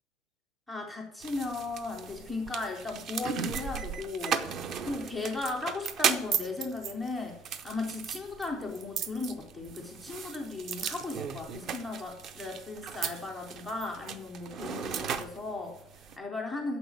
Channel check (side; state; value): both; normal; correlation 0.60